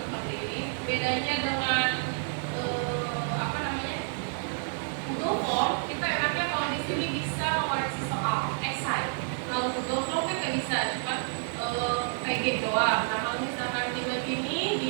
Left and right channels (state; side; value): silent; left; 58 dB below the other